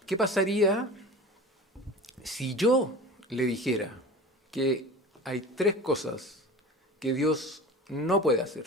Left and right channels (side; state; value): both; normal; correlation 0.35